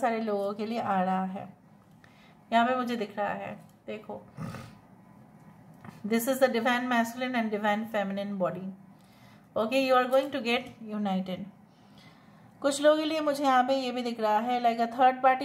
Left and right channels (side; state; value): both; identical; correlation 1.00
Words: लोगों के लिए आ रहा है. यहाँ पे मुझे दिख रहा है देखो this is the divine masculine and divine feminine body. Okay, you are going to get united. कुछ लोगों के लिए मुझे यहाँ पे ये भी दिख रहा है like a third